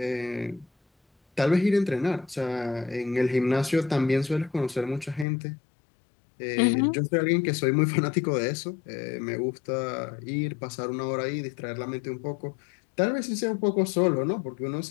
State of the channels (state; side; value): drops out; right; at 5.2 s